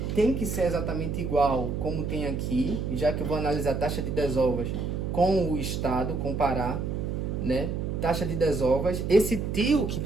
tem que ser exatamente igual como tem aqui, já que eu vou analisar a taxa de desovas com o estado, comparar, né? Taxa de desovas. Esse tio que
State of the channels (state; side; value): noise; right; hum, 2 dB below the sound